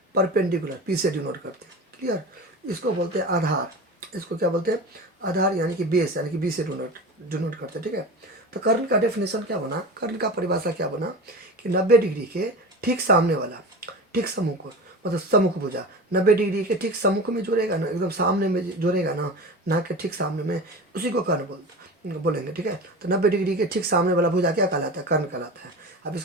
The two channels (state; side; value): normal; both; correlation 0.31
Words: परपेंडिकुलर, पी से डिनोट करते हैं। क्लियर? इसको बोलते हैं आधार, इसको क्या बोलते हैं, आधार यानी कि बेस, यानी कि बी से डिनोट करते हैं, ठीक है। तो कर्ण का डेफिनेशन क्या बना, कर्ण का परिभाषा क्या बना कि 90 डिग्री के ठीक सामने वाला, ठीक सम्मुख, मतलब सम्मुख भुजा 90 डिग्री के ठीक सम्मुख में जुड़ेगा ना, एकदम सामने में जुड़ेगा ना, नाक के ठीक सामने में, उसी को कर्ण बोलेंगे, ठीक है। तो 90 डिग्री के ठीक सामने वाला भुजा क्या कहलाता है, कर्ण कहलाता है। अब